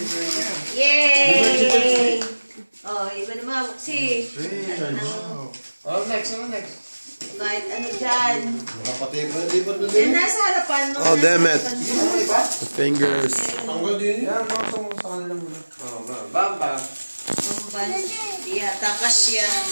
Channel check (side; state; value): both; inverted; correlation -1.00